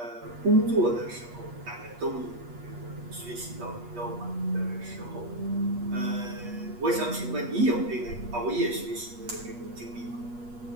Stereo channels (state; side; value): late; left; 8.3 ms